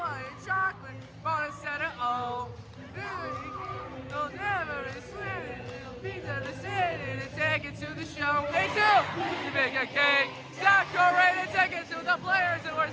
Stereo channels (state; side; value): identical; both; correlation 1.00